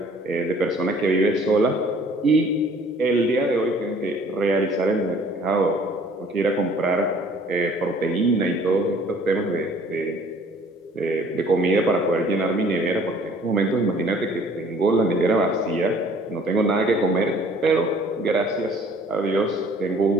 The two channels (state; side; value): normal; both; correlation 0.55